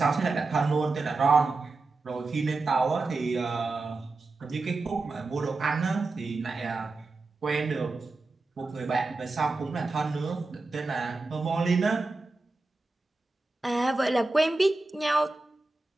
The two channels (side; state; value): left; quieter; 3.5 dB